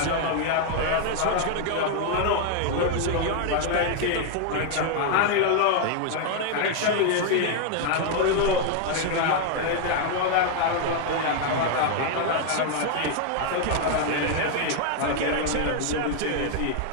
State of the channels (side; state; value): both; different; correlation 0.00